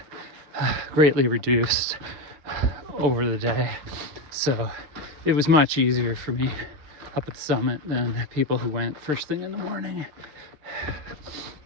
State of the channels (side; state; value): left; late; 6.2 ms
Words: greatly reduced over the day, so it was much easier for me up at the summit than people who went first thing in the morning.